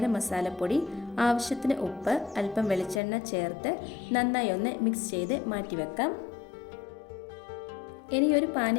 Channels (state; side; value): drops out; right; at 3.0 s